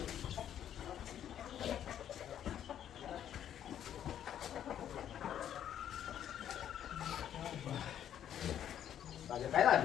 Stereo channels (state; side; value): quieter; right; 10.2 dB